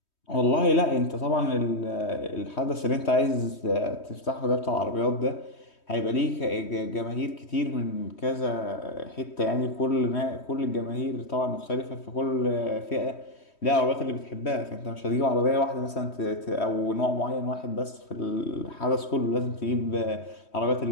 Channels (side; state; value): right; late; 3.2 ms